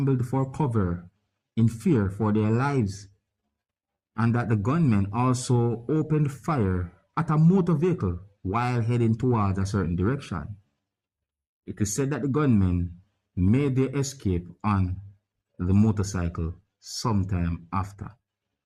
for cover in fear for their lives, and that the gunmen also opened fire at a motor vehicle while heading towards a certain direction. It is said that the gunmen made their escape on the motorcycle sometime after.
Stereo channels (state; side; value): identical; both; correlation 1.00